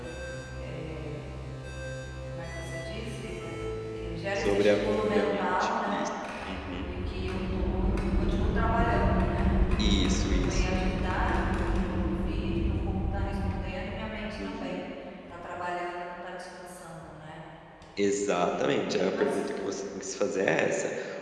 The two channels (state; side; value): identical; both; correlation 1.00